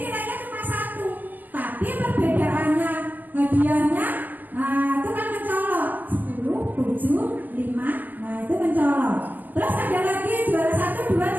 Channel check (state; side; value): late; left; 0.088 ms